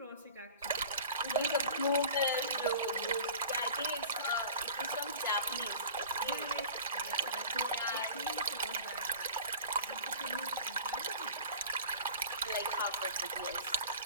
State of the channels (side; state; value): both; inverted; correlation -0.41